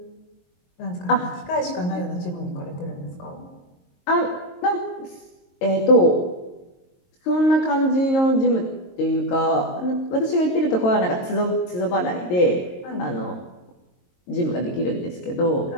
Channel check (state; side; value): late; right; 22 ms